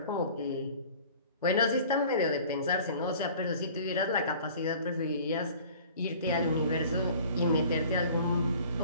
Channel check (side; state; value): both; inverted; correlation -0.47